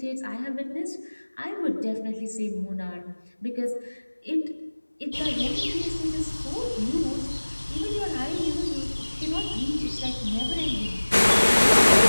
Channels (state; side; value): inverted; both; correlation -1.00